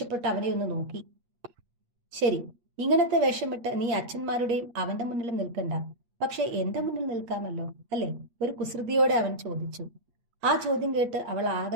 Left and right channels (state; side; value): late; left; 8.4 ms